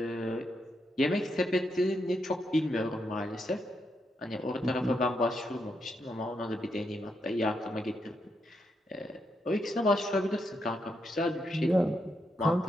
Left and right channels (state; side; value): normal; both; correlation 0.81